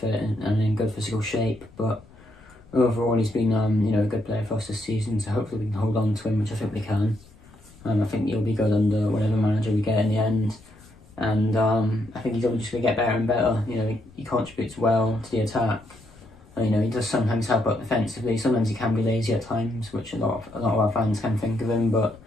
and in good physical shape, but overall he's been a good player for us this season, so hopefully we can hold on to him, which I think we can. I think he'll be good under whatever manager we get in the end, and I think he's only just going to get better and better. You know, he contributes well to the attack. You know, he does sometimes help out defensively. Sometimes he can be lazy at times, which a lot of our fans can think of him, but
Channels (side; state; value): left; noise; rumble, 25 dB below the sound